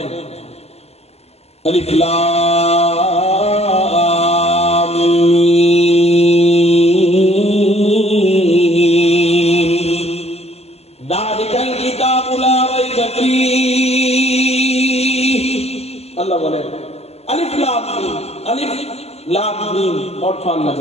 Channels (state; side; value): late; right; 0.30 ms